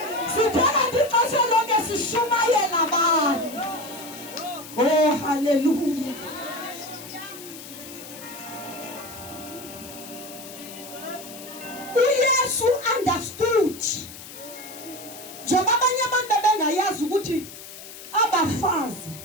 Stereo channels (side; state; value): left; noise; hiss, 14 dB below the sound